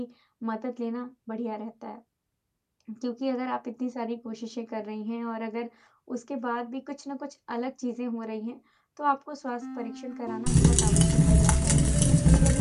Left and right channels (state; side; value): identical; both; correlation 1.00